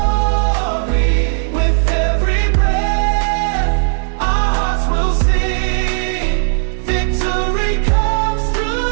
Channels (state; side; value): silent; left; digital silence